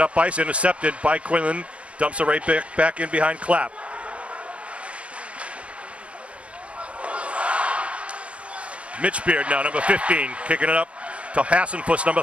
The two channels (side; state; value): left; late; 0.062 ms